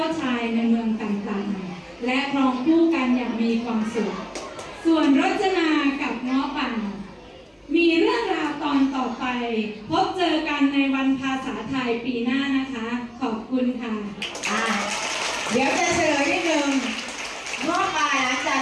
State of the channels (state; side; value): identical; both; correlation 1.00